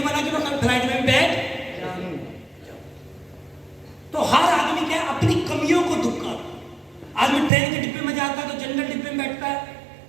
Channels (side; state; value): left; drops out; at 7.5 s